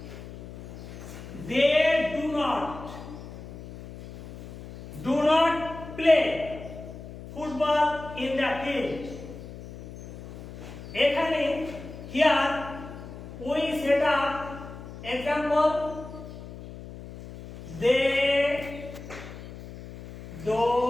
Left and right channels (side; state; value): left; noise; hum, 13 dB below the sound